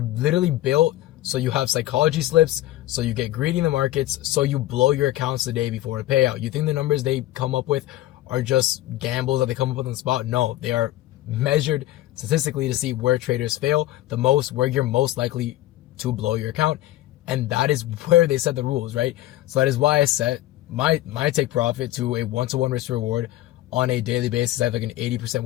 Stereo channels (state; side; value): quieter; right; 15.2 dB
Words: built so you have psychology slips, so you get greedy in the markets, so you blow your accounts the day before a payout. You think the numbers they come up with are just gambles that they come up with on the spot? No, they are measured statistically to see where traders fail the most, where you're most likely to blow your account. And that is where they set the rules, right? So that is why I set my take profit to a 1-to-1 risk reward on a daily basis. I have like an 80%